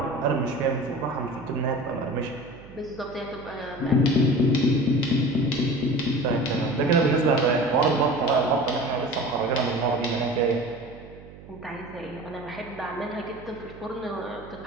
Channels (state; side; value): noise; right; hum, 18 dB below the sound